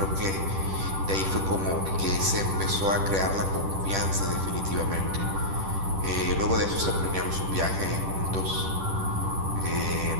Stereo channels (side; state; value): left; late; 10 ms